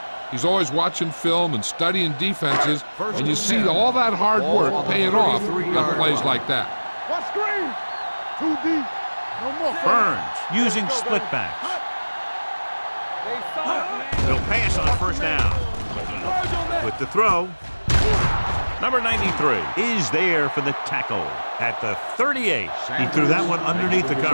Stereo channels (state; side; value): inverted; both; correlation -1.00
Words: He's always watching film and studying defenses, and you see all that hard work paying off on plays like that. What screen? Too deep. No more. Burns using split backs. They'll pass on 1st down. With the throw, Number 93 is there for the tackle at the 38. He threw that one underneath the